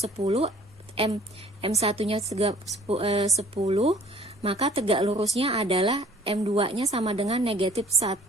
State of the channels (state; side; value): normal; both; correlation 0.54